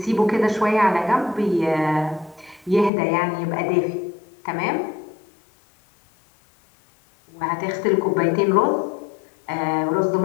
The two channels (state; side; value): drops out; right; at 2.9 s